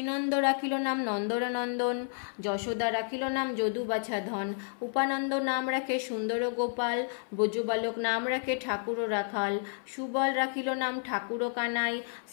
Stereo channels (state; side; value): silent; right; 57 dB below the other